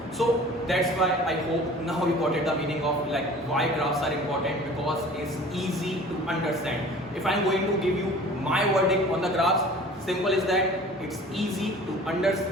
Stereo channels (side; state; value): both; normal; correlation 0.45